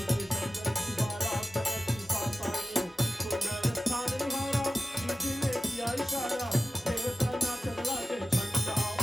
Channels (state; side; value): normal; both; correlation 0.95